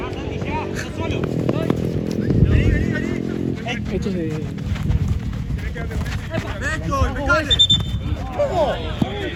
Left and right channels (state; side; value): identical; both; correlation 1.00